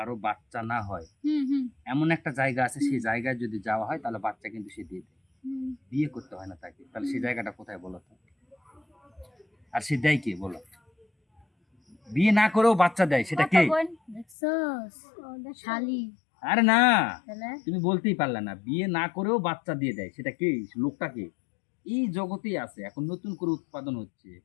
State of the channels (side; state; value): right; drops out; at 14.4 s